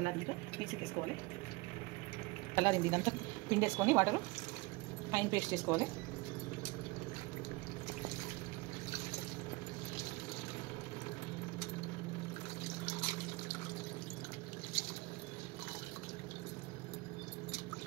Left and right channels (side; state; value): left; quieter; 23.6 dB